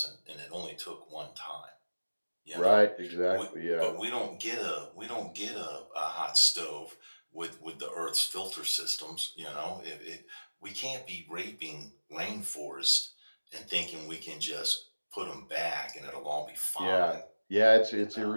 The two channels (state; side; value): inverted; both; correlation -1.00